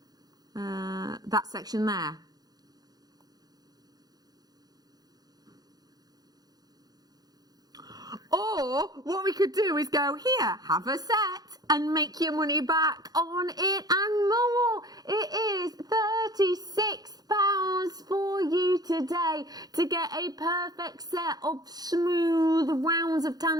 that section there. Or what we could do is go here, have a set, and make your money back on it and more. It is £36 for you today to get a perfect set of smooth rounds of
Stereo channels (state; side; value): late; left; 0.19 ms